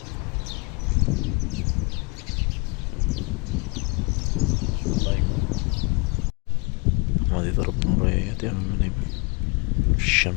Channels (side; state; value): right; quieter; 30.1 dB